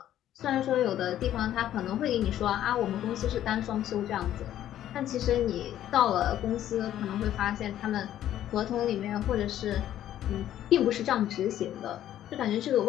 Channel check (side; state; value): right; quieter; 11.9 dB